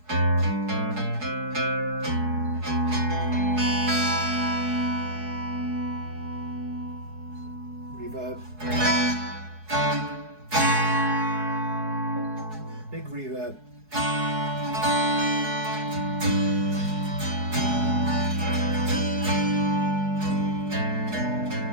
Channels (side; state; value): left; late; 4.7 ms